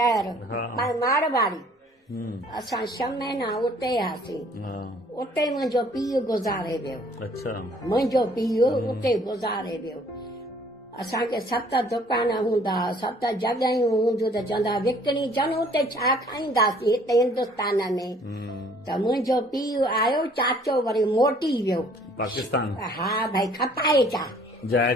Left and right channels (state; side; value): normal; both; correlation 0.58